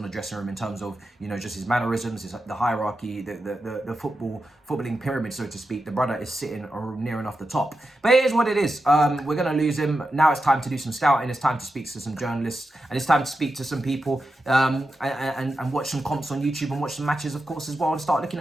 the dressing room in terms of, you know, just his mannerisms, the hierarchy, the footballing pyramid, so to speak. The brother is sitting near enough the top. But it is what it is. We're going to lose him. Now it's time to do some scouting. It's time to speak to some journalists. And it's time to speak to some people and watch some comps on YouTube and watch some matches, of course, as well, and start looking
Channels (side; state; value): both; normal; correlation 0.89